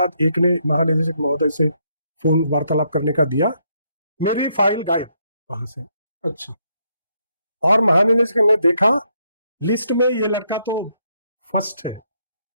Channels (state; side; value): inverted; both; correlation -0.75